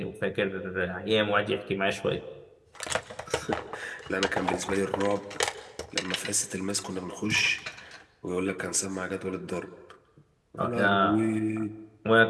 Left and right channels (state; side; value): identical; both; correlation 1.00